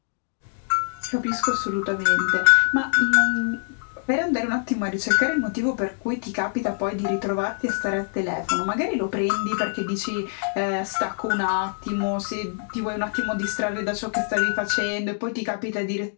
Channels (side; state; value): right; silent; digital silence